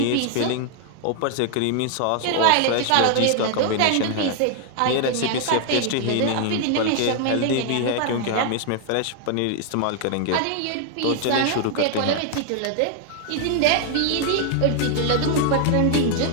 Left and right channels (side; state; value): both; different; correlation 0.00